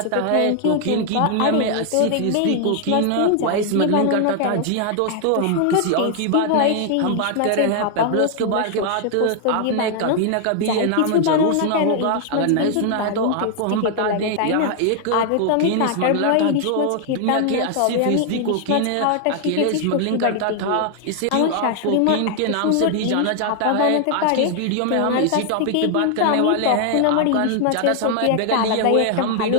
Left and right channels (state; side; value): different; both; correlation 0.00